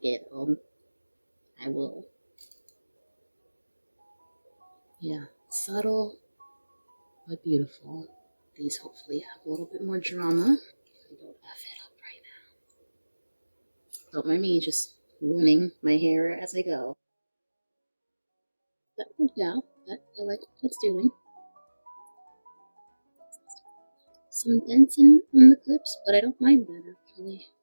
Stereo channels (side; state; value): both; inverted; correlation -1.00